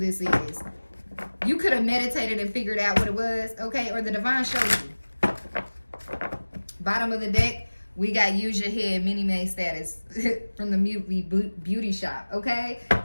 is. You could have meditated and figured out what it was, okay? Or the divine showed you. Bottom of the deck, we got use your head, Minnie Mae status from the beauty shop, okay?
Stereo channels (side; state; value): both; inverted; correlation -1.00